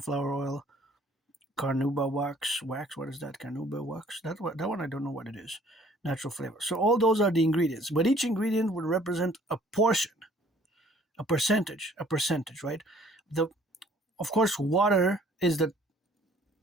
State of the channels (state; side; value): normal; both; correlation 0.57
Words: oil, carnauba wax. What is that? Carnauba wax? That one I don't know what it is. Natural flavor. So all those are the ingredients, but each ingredient would represent a portion, a percentage, right? The Of course, water is the